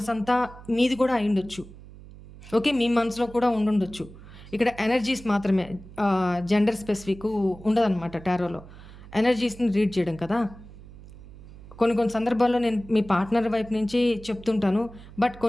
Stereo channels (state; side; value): noise; right; hum, 18 dB below the sound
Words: మీది కూడా అయ్యుండొచ్చు. ఓకే, మీ మనసులో కూడా ఉండుండొచ్చు. ఇక్కడ ఎనర్జీస్ మాత్రమే, జెండర్ స్పెసిఫిక్ ఉండదన్నమాట టారోలో. ఎనర్జీస్ని రీడ్ చేయడం కదా. కొన్ని సందర్భాల్లో నేను మీ పార్ట్నర్ వైపు నుంచి చెప్తుంటాను. బట్